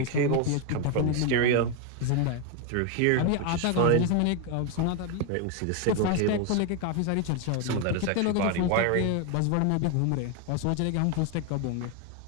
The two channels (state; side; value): different; both; correlation 0.01